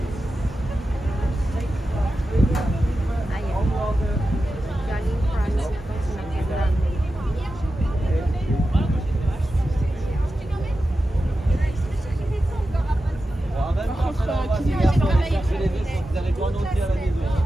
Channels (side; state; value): both; normal; correlation 0.92